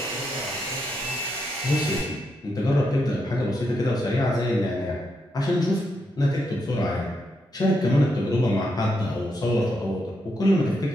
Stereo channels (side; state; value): both; normal; correlation 0.81